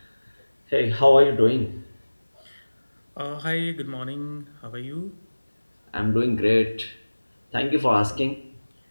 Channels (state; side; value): inverted; both; correlation -1.00